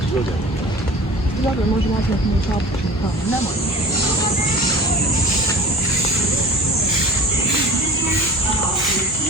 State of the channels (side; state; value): both; normal; correlation 0.40